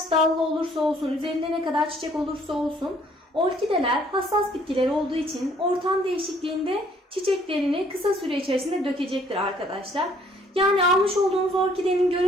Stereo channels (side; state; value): both; normal; correlation 0.62